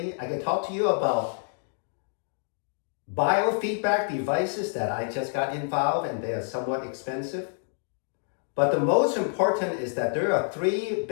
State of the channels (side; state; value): right; silent; digital silence